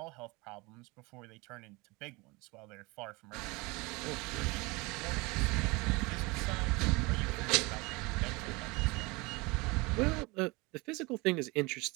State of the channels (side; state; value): left; quieter; 25.2 dB